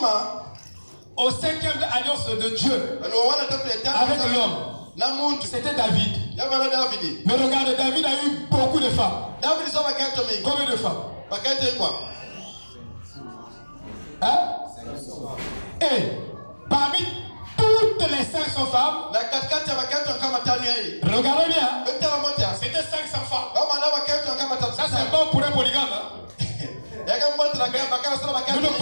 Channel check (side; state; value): both; inverted; correlation -1.00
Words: au 5e alliance de Dieu avec l'homme. C'était David. Mais regarde, David a eu beaucoup de femmes. Combien de femmes? Hein? Et parmi toutes les 500 femmes, regardez bien, c'était 500 femmes. Ça c'est bon pour un polygame. Hein? Nous ne